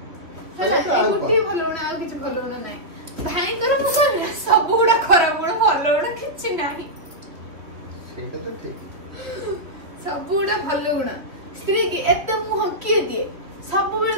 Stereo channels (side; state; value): left; late; 3.1 ms